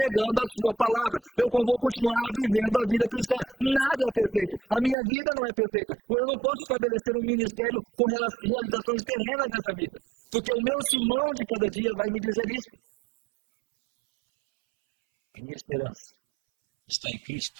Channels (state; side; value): drops out; left; at 5.0 s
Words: a sua palavra. Eu vou continuar vivendo a vida cristã. Nada é perfeito. A minha vida não é perfeita. Eu não posso estabelecer um ministério com realizações terrenas nessa vida. Porque o meu Simão de cada dia vai me dizer isso. A minha esperança está em